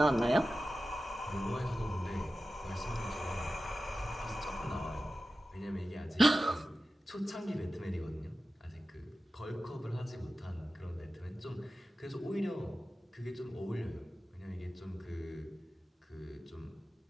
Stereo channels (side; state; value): both; normal; correlation 0.94